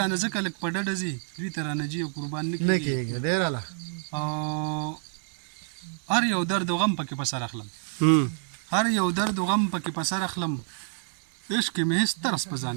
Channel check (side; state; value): left; silent; digital silence